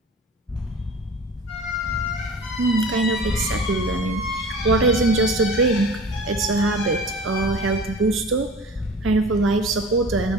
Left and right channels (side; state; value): both; normal; correlation 0.40